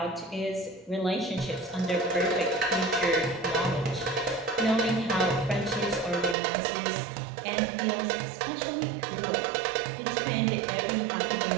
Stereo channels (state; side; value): drops out; left; at 6.4 s